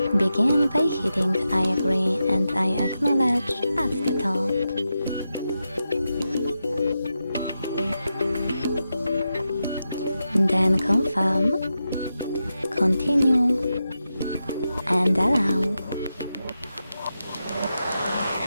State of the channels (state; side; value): inverted; both; correlation -0.89